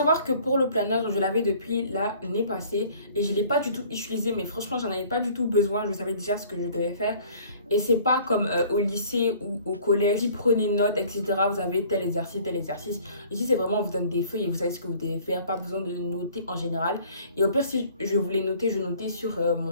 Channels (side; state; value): both; inverted; correlation -0.54